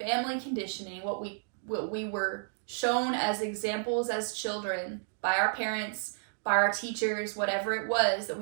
conditioning, what we were shown as examples as children by our parents, by our teachers, whatever it was that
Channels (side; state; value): left; silent; digital silence